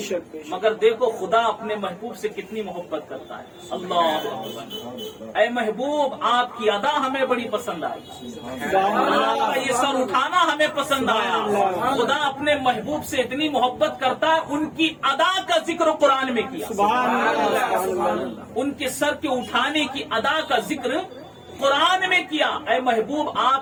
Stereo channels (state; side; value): identical; both; correlation 1.00